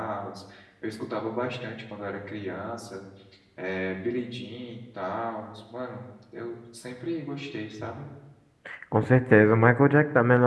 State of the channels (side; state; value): both; identical; correlation 1.00